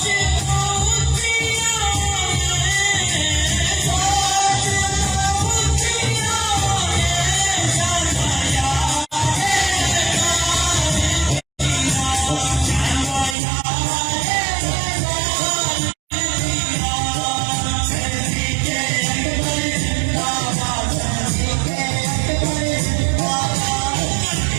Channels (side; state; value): left; drops out; at 13.4 s